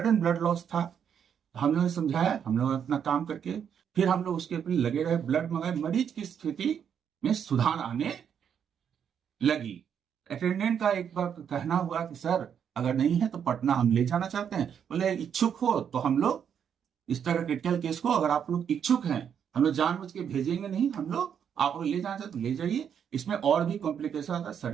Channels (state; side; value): quieter; left; 8.1 dB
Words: ब्लड लॉस था। हम लोगों ने समझाया, हम लोग अपना काम करके फिर हम लोग उसके ऊपर लगे रहे, ब्लड मंगाए, मरीज की स्थिति में सुधार आने लगी। अटेंडेंट का एक बार कहना हुआ कि सर अगर नहीं है तो पटना हम ले जाना चाहते हैं। बोले इच्छुक हो तो हम लोग इस तरह क्रिटिकल केस को अगर आप लोग इच्छुक हैं हम लोग जानबूझ के भेजेंगे नहीं, हम लोग आप लोग ले जाना चाहते तो ले जाइए। इसमें और भी कॉम्प्लिकेशन आता है,